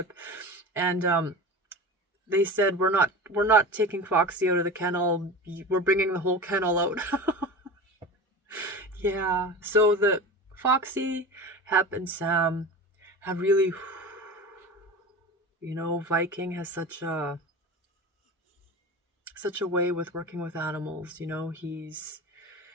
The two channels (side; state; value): both; normal; correlation 0.31